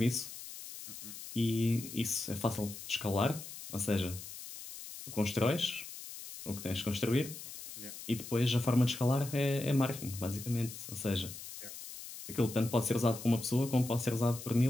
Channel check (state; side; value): noise; left; hiss, 12 dB below the sound